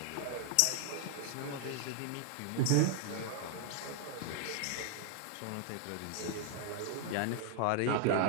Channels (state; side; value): different; both; correlation 0.00